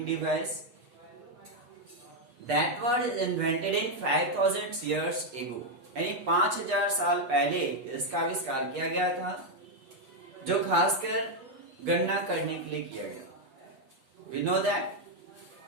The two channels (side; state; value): left; late; 8.2 ms